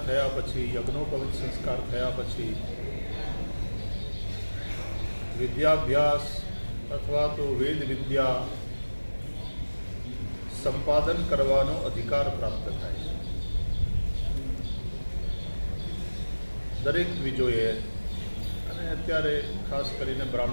થયા પછી, યજ્ઞોપવિત સંસ્કાર થયા પછી વિદ્યાભ્યાસ અથવા તો વેદ વિદ્યા સંપાદન કરવાનો અધિકાર પ્રાપ્ત થાય છે. દરેક દ્વિજોએ અને અત્યારે ખાસ કરીને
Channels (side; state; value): both; inverted; correlation -1.00